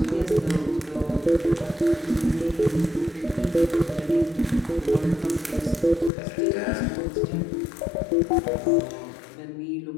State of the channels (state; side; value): drops out; right; at 6.1 s